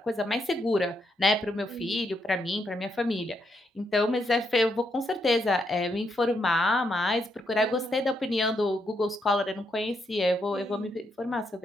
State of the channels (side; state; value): both; normal; correlation 0.79